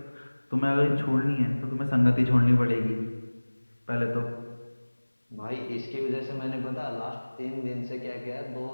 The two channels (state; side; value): inverted; both; correlation -1.00